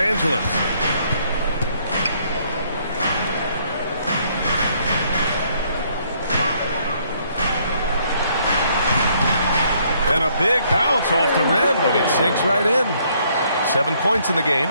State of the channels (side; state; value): both; inverted; correlation -0.67